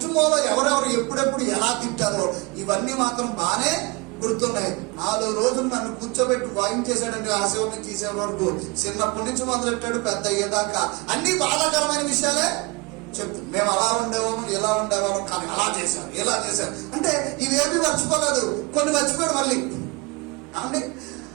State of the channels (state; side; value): quieter; left; 26.1 dB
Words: ఎవరెవరు ఎప్పుడెప్పుడు ఎలా తింటారో ఇవన్నీ మాత్రం బాగానే గుర్తున్నాయి. 4 రోజులు నన్ను కూర్చోబెట్టి వాయించేశాడండి. ఆ సేవని తీసే వరకు చిన్నప్పటి నుంచి మొదలెట్టాడు, పెద్ద అయ్యేదాకా అన్ని బాధాకరమైన విషయాలే చెప్తు. మేము అలా ఉండేవాము, ఎలా ఉండేవాము, కానీ అలా చేశారు, ఇలా చేశారు అంటే ఇవేమీ మర్చిపోలేదు. కొన్ని మర్చిపోయాడు, మళ్ళీ అంటే